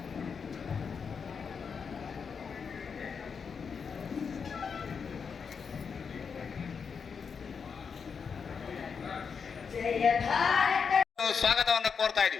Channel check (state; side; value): quieter; right; 6.0 dB